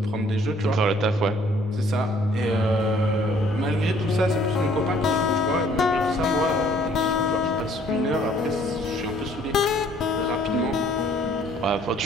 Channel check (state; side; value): normal; both; correlation 0.60